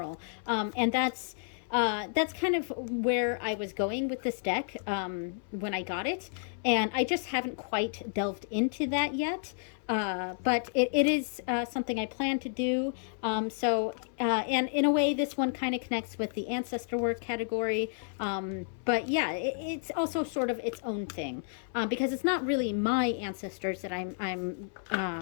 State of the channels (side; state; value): right; silent; 57 dB below the other